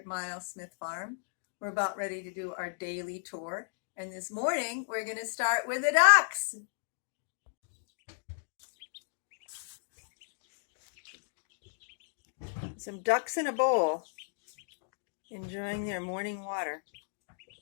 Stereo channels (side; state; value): right; silent; digital silence